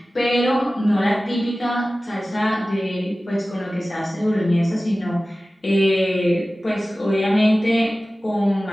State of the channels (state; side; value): normal; both; correlation 0.96